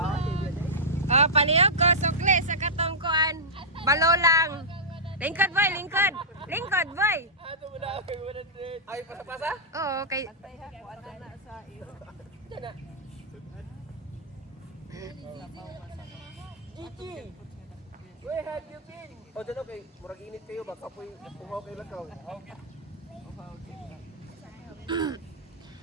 Oh, palihog ko, sukli sa katongkuan. Balo lang. Lingkod boy, lingkod. Lingkod boy. Ato mo na ako 100. Ay, pasa-pasa? Oo, kay Tay ha ko ana na sa iyo. Diyan na. Gigi! Where have you been? O, dyan okay. Murag init kayo. Baka po'y pumaw kayo lakaw.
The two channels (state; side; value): normal; both; correlation -0.11